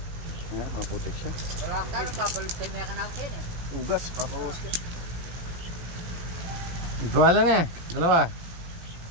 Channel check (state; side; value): late; left; 17 ms